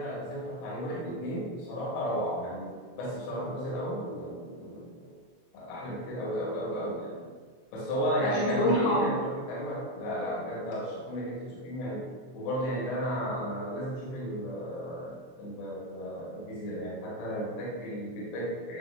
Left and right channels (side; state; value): right; late; 23 ms